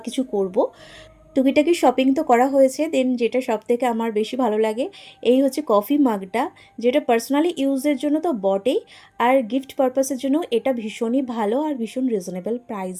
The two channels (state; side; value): identical; both; correlation 1.00